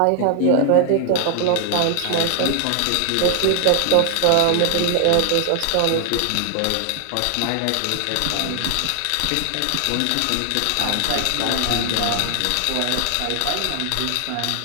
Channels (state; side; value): different; both; correlation 0.00